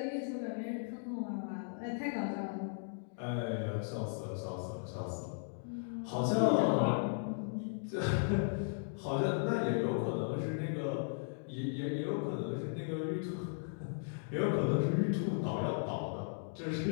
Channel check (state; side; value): silent; right; digital silence